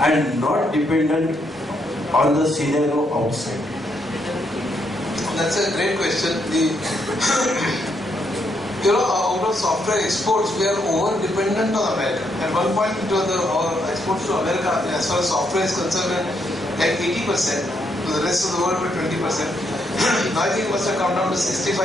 not dependent on the scenario outside. That's a great question. Out of software exports, we are over dependent on America. At one point, our exports to America, as far as software is concerned, like 80%. To the rest of the world, were 20%. Now I think it must have come down to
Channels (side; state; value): both; normal; correlation 0.76